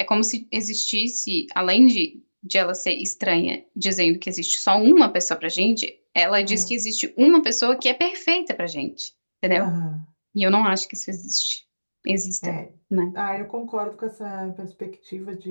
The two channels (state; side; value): inverted; both; correlation -1.00